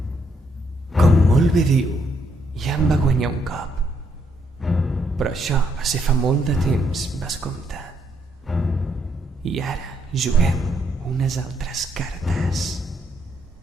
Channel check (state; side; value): normal; both; correlation 0.74